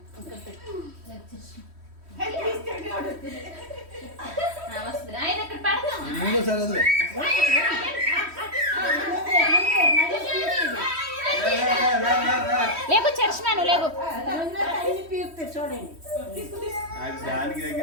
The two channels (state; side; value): late; left; 3.1 ms